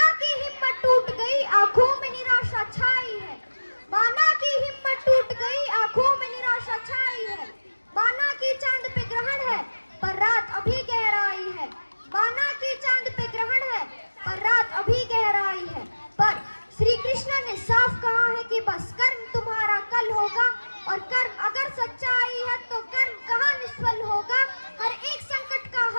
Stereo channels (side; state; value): both; inverted; correlation -1.00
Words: की हिम्मत टूट गई, आंखों में निराशा छाई है, माना की हिम्मत टूट गई, आंखों में निराशा छाई है। माना की चांद पे ग्रहण है पर रात अभी गहराई है, माना की चांद पे ग्रहण है पर रात अभी गहराई है। पर श्री कृष्ण ने साफ कहा है कि बस कर्म तुम्हारा कल होगा, और कर्म अगर सच्चाई है तो कर्म कहाँ निष्फल होगा। हर एक संकट का